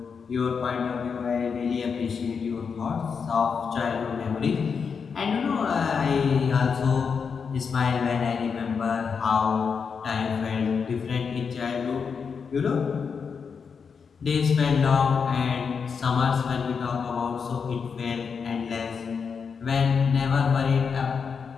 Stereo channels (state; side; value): quieter; right; 6.0 dB